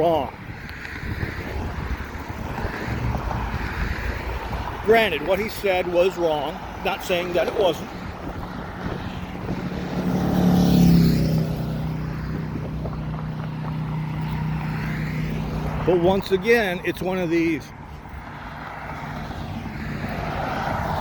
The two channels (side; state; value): both; identical; correlation 1.00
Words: Granted, what he said was wrong. Not saying that it wasn't. But once again, it's one of these.